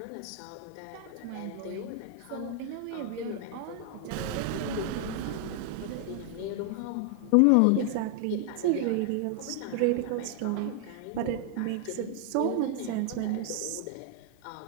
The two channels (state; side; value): different; both; correlation 0.00